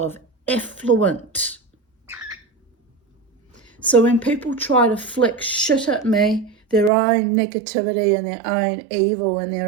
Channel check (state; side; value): drops out; left; at 6.9 s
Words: effluent. So when people try to flick shit at me, their own negativity and their own evil and